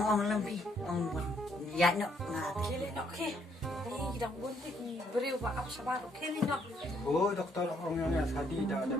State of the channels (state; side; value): normal; both; correlation 0.70